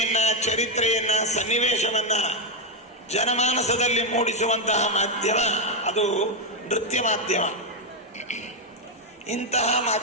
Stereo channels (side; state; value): both; normal; correlation 0.02